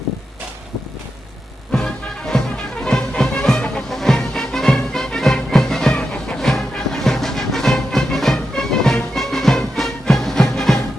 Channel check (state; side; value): normal; both; correlation 0.88